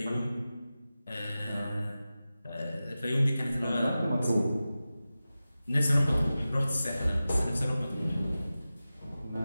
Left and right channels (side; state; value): both; inverted; correlation -0.95